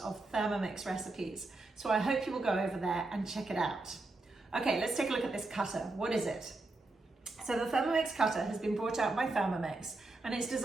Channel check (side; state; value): left; quieter; 3.1 dB